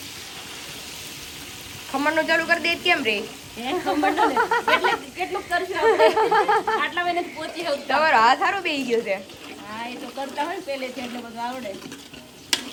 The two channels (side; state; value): both; identical; correlation 1.00